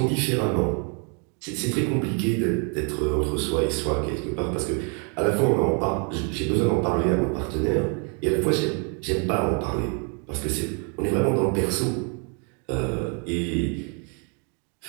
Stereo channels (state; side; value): quieter; left; 38.3 dB